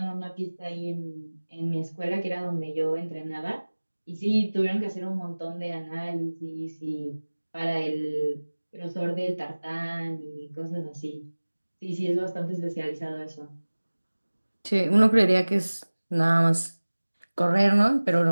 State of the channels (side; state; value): both; inverted; correlation -1.00